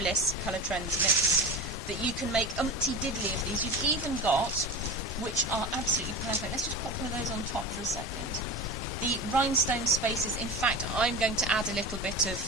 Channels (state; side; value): normal; both; correlation 0.28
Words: Color Trends mix that you can make umpty diddly of these. You've even got, which are absolutely perfect. Let's just pop one of those on top for a second. The rhinestone spaces. In fact, I'm going to add a little bit